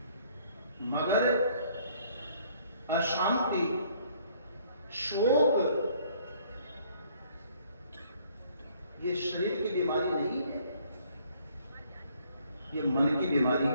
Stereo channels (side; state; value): both; inverted; correlation -0.61